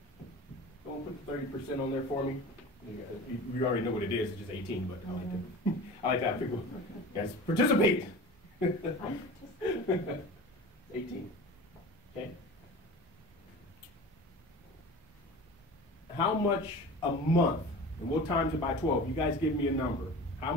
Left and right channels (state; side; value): normal; both; correlation 0.36